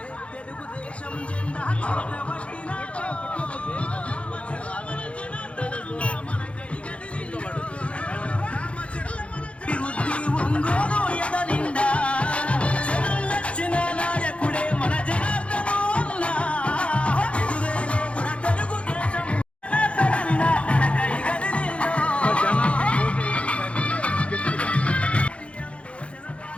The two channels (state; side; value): late; right; 0.061 ms